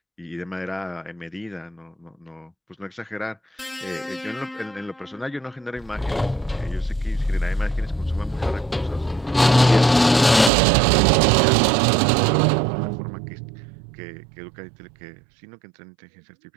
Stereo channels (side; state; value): left; drops out; at 10.5 s